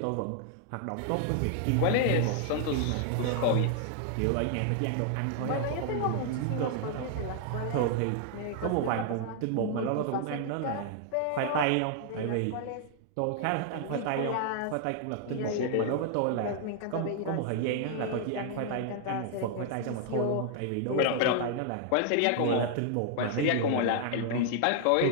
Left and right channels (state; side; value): different; both; correlation 0.00